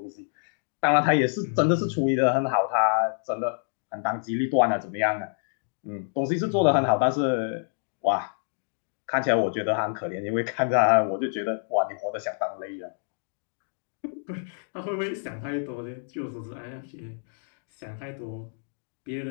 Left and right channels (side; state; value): right; silent; digital silence